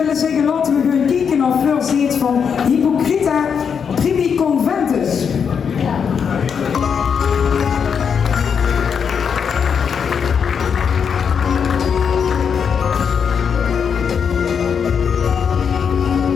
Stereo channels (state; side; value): quieter; right; 6.9 dB